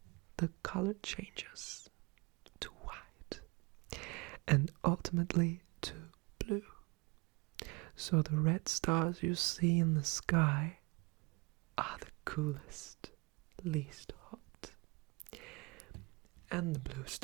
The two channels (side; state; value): left; quieter; 27.8 dB